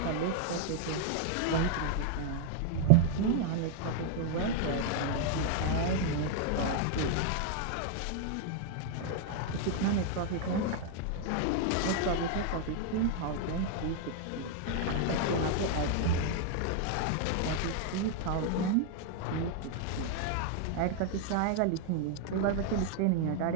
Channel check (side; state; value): both; different; correlation 0.00